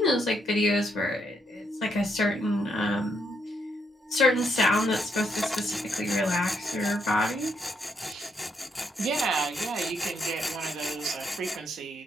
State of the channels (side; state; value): both; normal; correlation 0.76